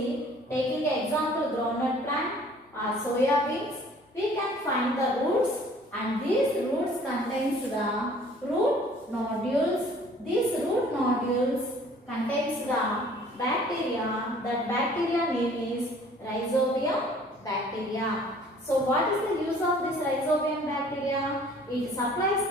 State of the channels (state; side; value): normal; both; correlation 0.54